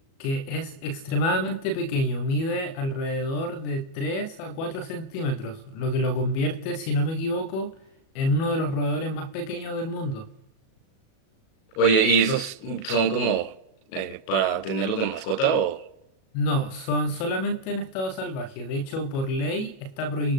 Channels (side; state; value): right; late; 37 ms